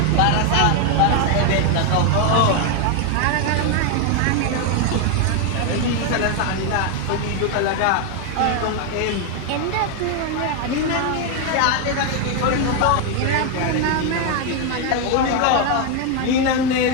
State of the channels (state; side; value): different; both; correlation 0.01